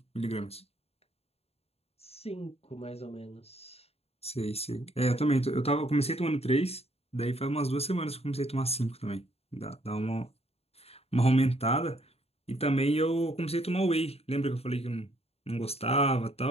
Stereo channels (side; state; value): right; late; 0.29 ms